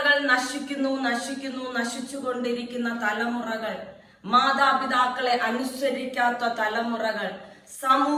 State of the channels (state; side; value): identical; both; correlation 1.00